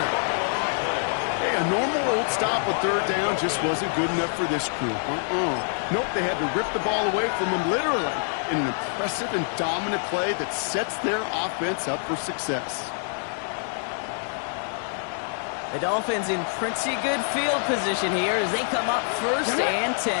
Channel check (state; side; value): silent; right; 59 dB below the other